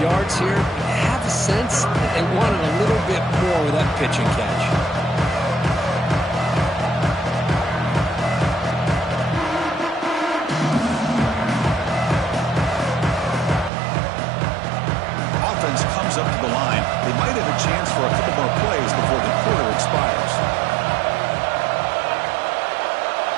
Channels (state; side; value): drops out; left; at 13.7 s